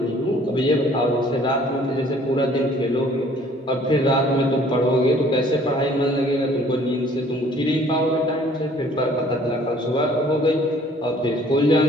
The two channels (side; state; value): both; normal; correlation 0.56